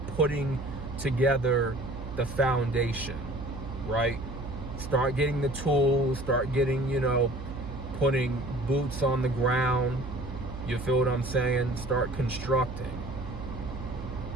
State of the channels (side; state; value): right; noise; hum, 10 dB below the sound